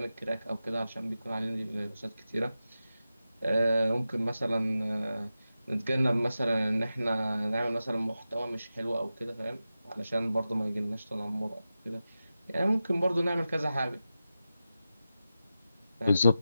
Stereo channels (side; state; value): both; inverted; correlation -0.92